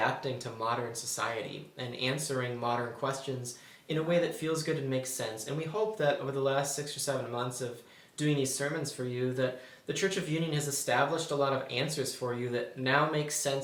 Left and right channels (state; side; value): identical; both; correlation 1.00